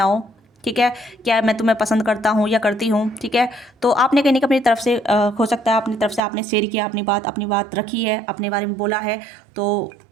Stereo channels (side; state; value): left; drops out; at 6.2 s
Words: ठीक है, क्या मैं तुम्हें पसंद करता हूँ या करती हूँ, ठीक है। तो आपने कहने का अपनी तरफ से हो सकता है अपनी तरफ से आपने शेयर किया, अपनी बात रखी है, अपने बारे में बोला है। तो